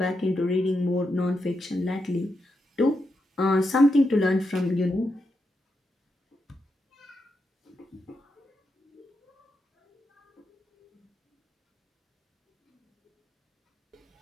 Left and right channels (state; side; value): normal; both; correlation 0.85